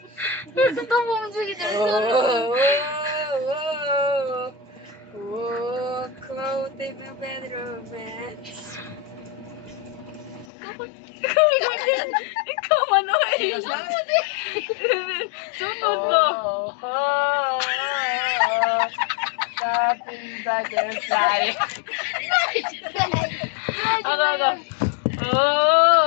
Gusto mo sige cloud in the bedroom, man. Ikaw Manoy. Sunod mo. Popping butterfly. Ano?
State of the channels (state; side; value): drops out; right; at 10.5 s